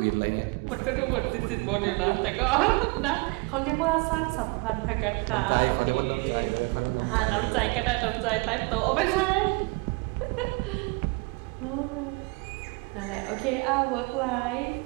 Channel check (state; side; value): quieter; left; 28.8 dB